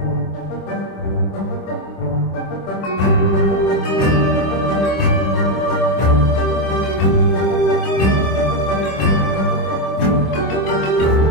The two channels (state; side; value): late; right; 26 ms